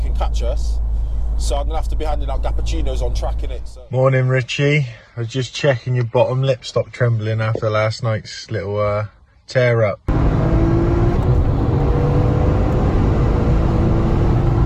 catch us. So I'm going to have to be handing out cappuccinos on track in it. So. Morning, Richie. I was just checking your bottom lip stopped trembling after last night's little Tear up.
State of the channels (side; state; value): both; identical; correlation 1.00